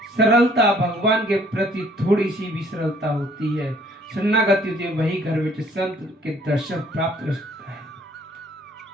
सरलता, भगवान के प्रति थोड़ी सी भी सरलता होती है, शरणागति होती है, वही घर बैठे संत के दर्शन प्राप्त कर सकता है।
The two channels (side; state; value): both; normal; correlation 0.59